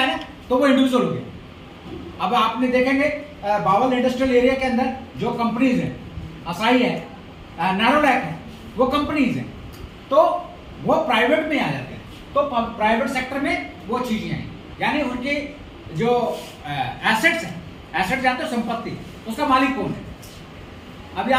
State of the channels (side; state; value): both; identical; correlation 1.00